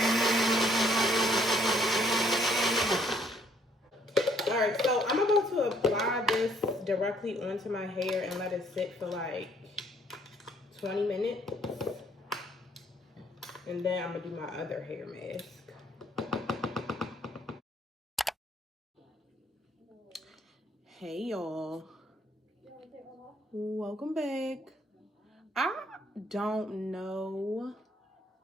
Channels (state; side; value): normal; both; correlation 0.65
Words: Alright, so I'm about to apply this directly onto my hair and let it sit for like 20 minutes. And then I'm gonna do my other hair mask. Hey y'all. Welcome back. I don't know